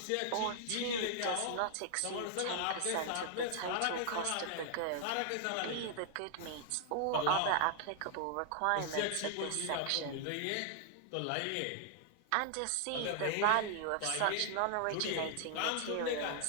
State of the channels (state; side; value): different; both; correlation 0.00